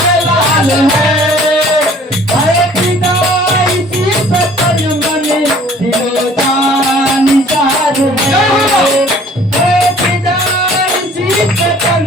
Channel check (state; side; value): normal; both; correlation 0.53